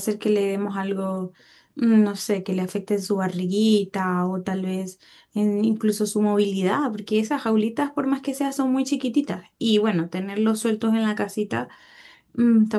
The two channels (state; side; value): identical; both; correlation 1.00